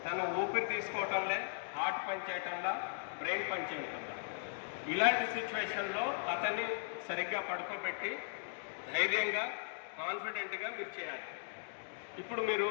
తను ఊపిరి తీసుకోవటంలే, హార్ట్ పని చేయటంలో, బ్రెయిన్ పని చేయటంలో. ఇలాంటి సిచ్యువేషన్లో అతన్ని సరిగ్గా పడుకోబెట్టి ధైర్యంగా కాన్ఫిడెంట్గా మీరు చేయాలి. ఇప్పుడు మీరు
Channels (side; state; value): right; silent; digital silence